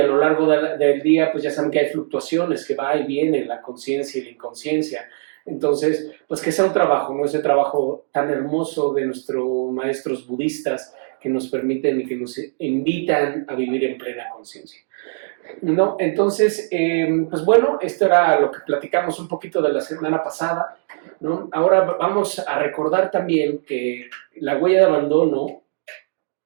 lo largo del día, pues ya saben que hay fluctuaciones, que va y viene la conciencia y la inconsciencia. Entonces, pues que sea un trabajo, ¿no? Ese trabajo tan hermoso de nuestros maestros budistas que nos permiten y que nos invitan a vivir en plena conciencia. No, entonces, pues bueno, esto era lo que platicamos un poquito de la semana pasada, ¿no? Ahora vamos a recordar también que la huella de abandono,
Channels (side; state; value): left; silent; digital silence